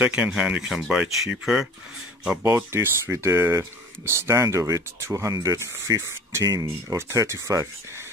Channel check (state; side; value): normal; both; correlation 0.44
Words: hand you can buy cheaper. I bought this with the stand of it, 215 or 35.